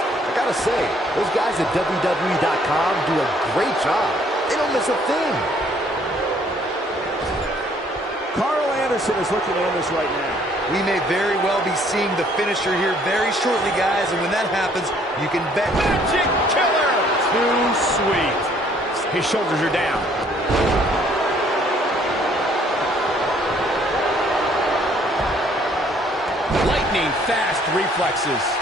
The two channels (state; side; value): normal; both; correlation 0.62